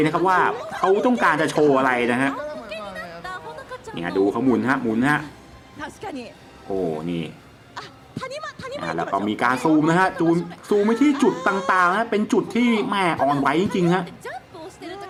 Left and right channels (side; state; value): both; identical; correlation 1.00